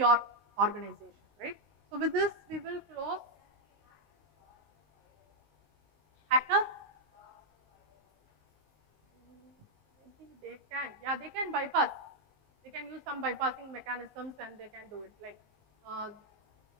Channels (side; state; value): left; late; 19 ms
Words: organization, right? So with this, we will close. Hackers? Maybe they can, yeah, they can bypass. They can use some bypassing mechanisms and they can do it. Like,